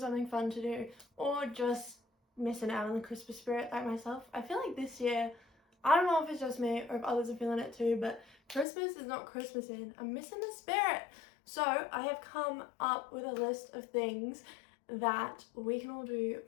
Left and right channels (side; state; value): right; drops out; at 8.7 s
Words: fun to do, or just missing out on the Christmas spirit like myself? I feel like this year, I don't know if it's just me or if others are feeling it too, but Christmas is not Christmasing. I'm missing the spirit. So I have come up with a list of things that we can all do